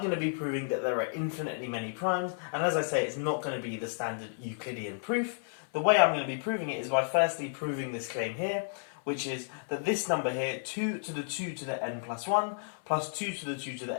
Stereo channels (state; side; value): silent; right; 56 dB below the other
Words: to be proving that there are infinitely many primes, and as I say, it's not going to be the standard Euclidean proof. The way I'm going to be proving it is by firstly proving this claim here, which is that this number here, 2 to the 2 to the n plus 1, plus 2 to the 2 to